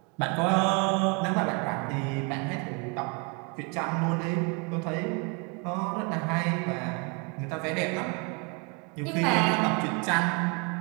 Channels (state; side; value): quieter; left; 32.3 dB